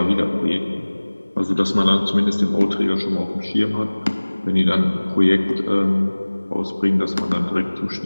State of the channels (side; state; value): both; inverted; correlation -1.00